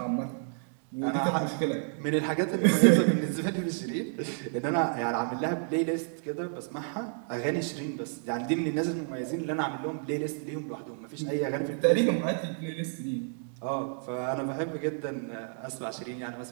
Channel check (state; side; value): silent; left; 58 dB below the other